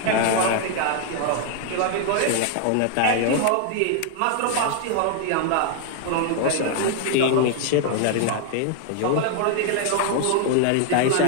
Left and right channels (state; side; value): different; both; correlation 0.00